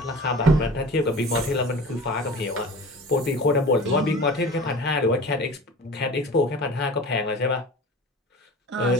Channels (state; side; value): normal; both; correlation 0.38